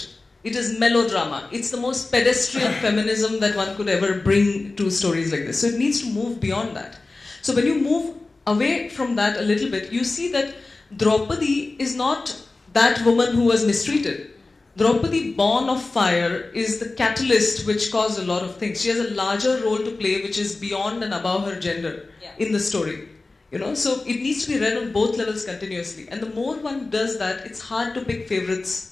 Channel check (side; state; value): right; quieter; 3.4 dB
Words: It is melodrama. It's the most pedestrian feminism that one could ever bring to stories like this. So it needs to move beyond that. So when you move away from that a little bit, you see that Draupadi is not that woman who was mistreated. Draupadi, born of fire, is the catalyst which caused a lot of things. She has a larger role to play which is beyond and above her gender in the story. You know, so it needs to be read on both levels continuously. And the more one does that, it's hard to pick